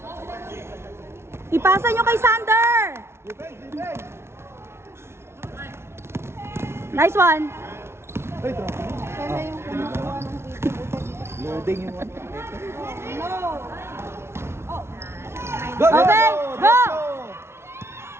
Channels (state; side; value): late; left; 0.12 ms